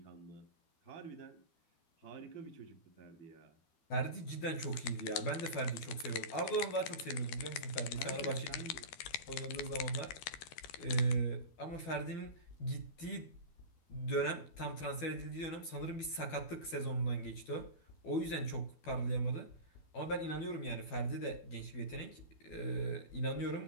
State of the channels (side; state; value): right; late; 12 ms